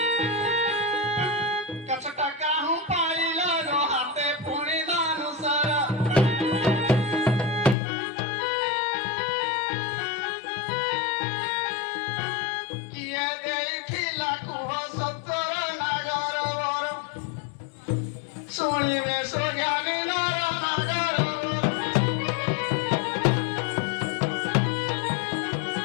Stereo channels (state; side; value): drops out; right; at 7.8 s